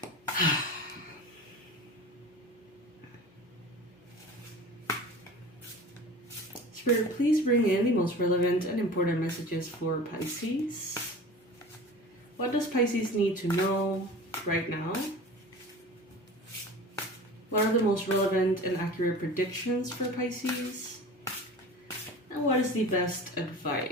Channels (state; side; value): normal; both; correlation 0.37